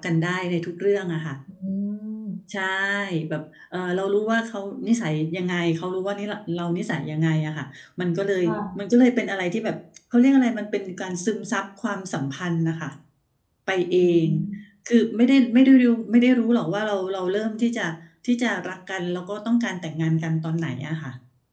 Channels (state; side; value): identical; both; correlation 1.00